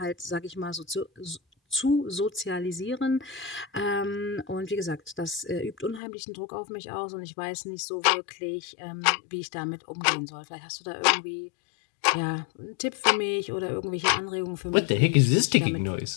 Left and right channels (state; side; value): drops out; right; at 6.0 s